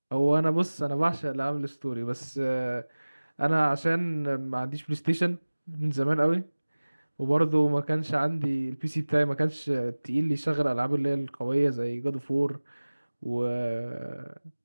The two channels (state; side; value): inverted; both; correlation -1.00